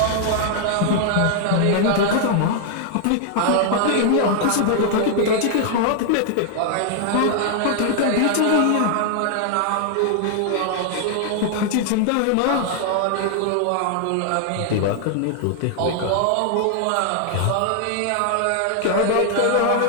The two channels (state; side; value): different; both; correlation 0.00